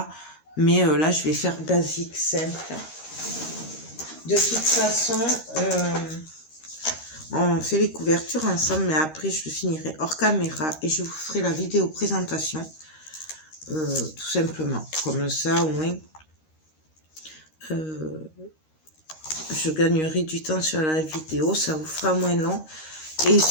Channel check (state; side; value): late; right; 13 ms